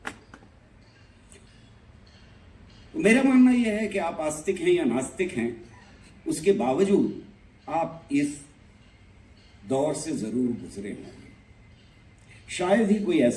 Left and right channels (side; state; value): both; identical; correlation 1.00